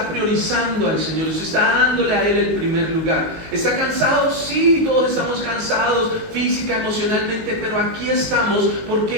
priorizando al Señor, usted está dándole a Él el primer lugar. ¿Está cansado? Sí, todos estamos cansados física, emocionalmente, pero aquí estamos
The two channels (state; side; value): late; left; 19 ms